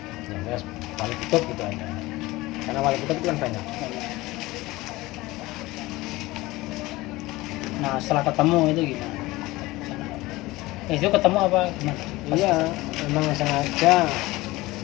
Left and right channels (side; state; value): right; quieter; 19.8 dB